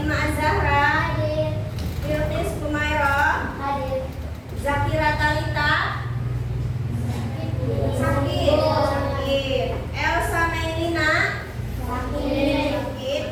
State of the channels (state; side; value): identical; both; correlation 1.00